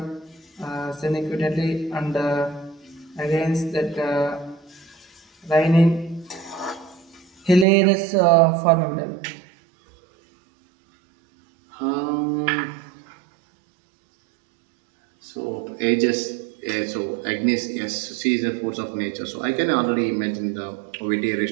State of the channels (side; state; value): left; drops out; at 7.7 s